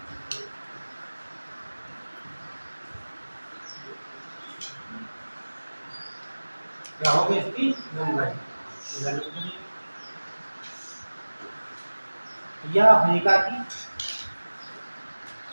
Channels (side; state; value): both; inverted; correlation -1.00